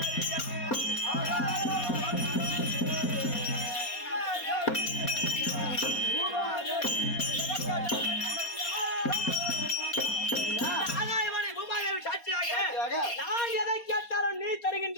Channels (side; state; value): right; late; 4.2 ms